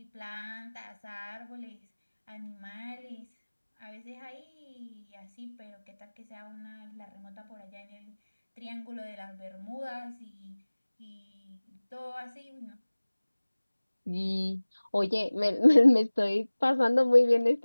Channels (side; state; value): both; inverted; correlation -1.00